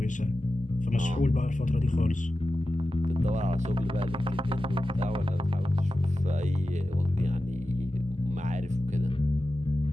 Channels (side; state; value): both; normal; correlation 0.93